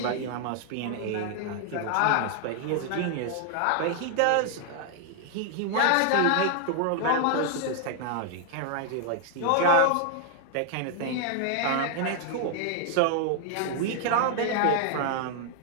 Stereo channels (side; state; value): both; different; correlation 0.00